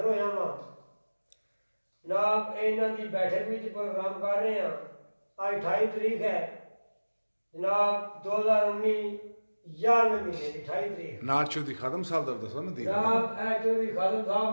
होया वां। जनाब इन्हां दी बैठक में प्रोग्राम कर रहे हैं। आज 28 तारीख है जनाब 2019 11वें महीने की 28 तारीख। नाल चौधरी खादम साहब दा दसो नदीर। जनाब ए चौधरी खादम साहब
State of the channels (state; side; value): inverted; both; correlation -1.00